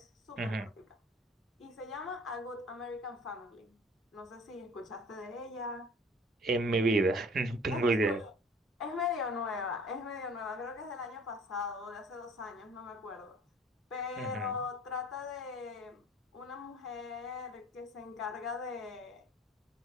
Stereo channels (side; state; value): both; normal; correlation 0.50